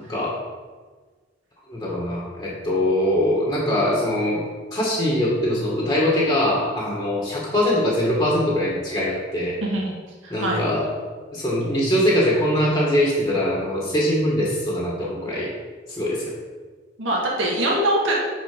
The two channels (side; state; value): both; normal; correlation 0.38